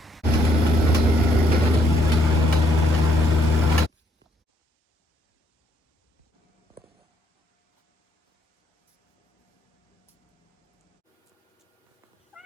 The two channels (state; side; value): normal; both; correlation 0.69